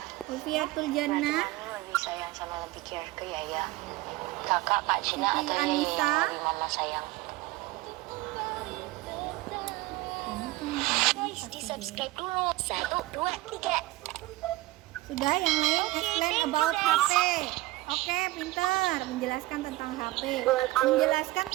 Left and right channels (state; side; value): quieter; left; 18.5 dB